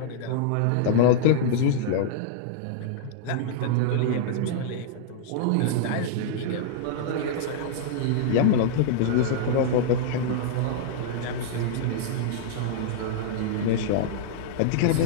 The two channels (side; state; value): both; different; correlation -0.02